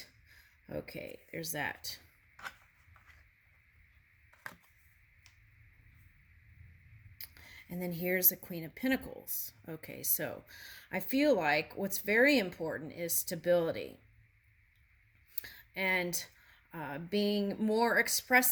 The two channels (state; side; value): identical; both; correlation 1.00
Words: Okay, there's that. And then here's the Queen of Pentacles. Okay, so I feel like what's very important is stability and being more